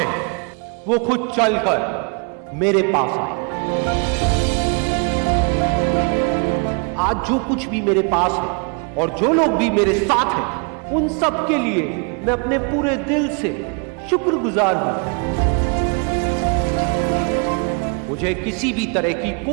वो खुद चलकर मेरे पास आए। आज जो कुछ भी मेरे पास है और जो लोग भी मेरे साथ हैं, उन सब के लिए मैं अपने पूरे दिल से शुक्रगुजार हूं। मुझे किसी भी तरह की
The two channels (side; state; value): left; quieter; 36.3 dB